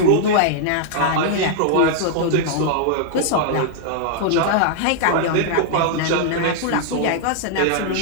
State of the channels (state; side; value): different; both; correlation -0.01